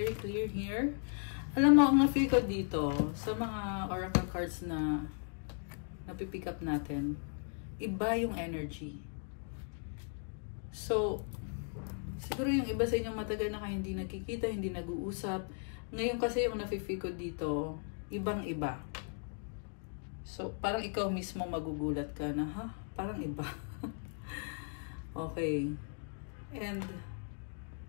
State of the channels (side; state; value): right; silent; 53 dB below the other